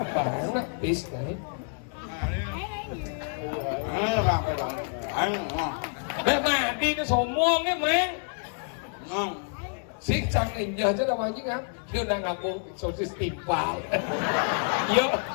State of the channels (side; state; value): right; silent; 56 dB below the other